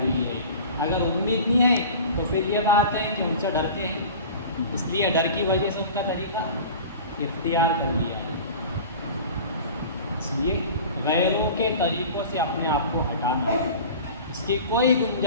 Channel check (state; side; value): inverted; both; correlation -0.38